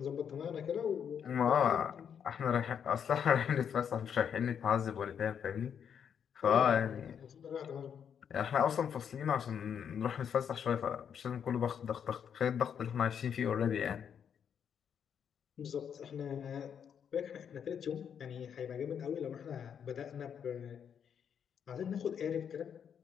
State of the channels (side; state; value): right; quieter; 7.9 dB